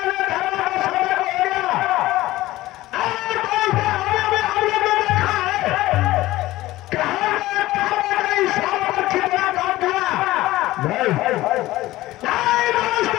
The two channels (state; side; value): quieter; right; 17.0 dB